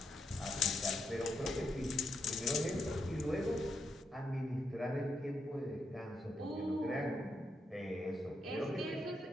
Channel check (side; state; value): both; normal; correlation 0.82